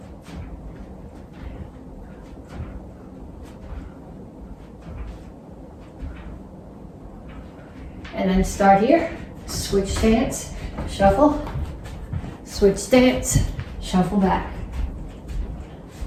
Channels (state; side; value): identical; both; correlation 1.00